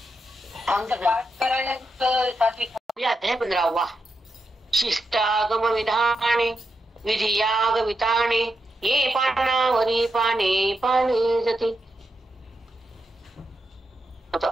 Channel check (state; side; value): normal; both; correlation 0.85